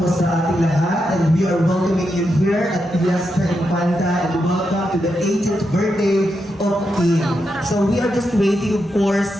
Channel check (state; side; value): normal; both; correlation 0.85